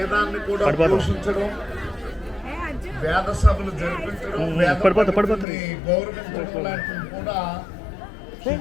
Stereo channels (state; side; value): drops out; right; at 5.5 s